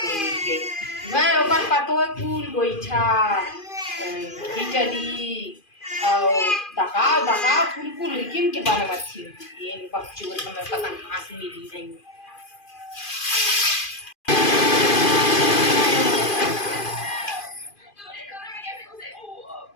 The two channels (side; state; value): right; late; 2.4 ms